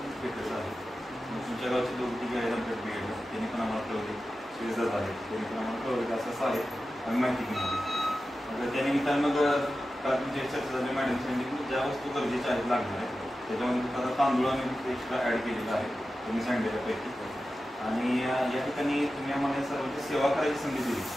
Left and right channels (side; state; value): both; normal; correlation 0.93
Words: भेटलं आहे. तुमच्या गावचे लोक तिघे आहेत आमच्या B.Ed त्यांनी पण आम्हाला कळवले. श्रीजात आहेत त्यांनी पण आम्हाला कळवले असं असं आहे आम्ही माहिती घेतली. मग त्यानिमित्तानं मग तुमची चर्चा झाली. मॅडम सांगितली ज्या वस्तू गरजेच्या आहेत लागणार आहेत त्याच्यामध्ये आता तांदूळ आम्ही एक्स्ट्रा ॲड केलेला आहे तुम्ही सांगितल्यापैकी. आणि या ठिकाणी तुम्ही आम्हाला सर्वांची सेवा करायची संधी दिली.